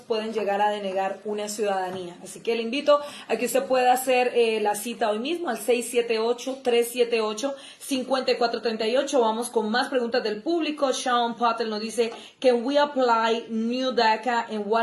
pueden llegar a denegar una ciudadanía. Así que le invito a que usted pueda hacer la cita hoy mismo al 678-378-5438. Vamos con más preguntas del público. Sean Patel nos dice, can we apply new DACA and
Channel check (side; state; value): both; identical; correlation 1.00